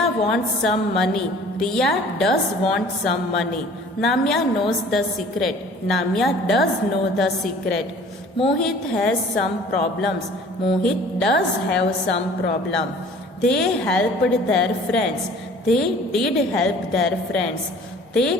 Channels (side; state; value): both; normal; correlation 0.49